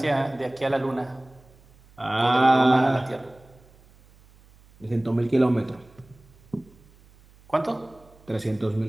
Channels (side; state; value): right; noise; hum, 27 dB below the sound